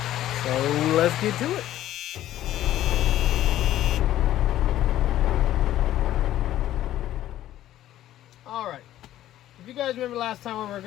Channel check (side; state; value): right; quieter; 13.2 dB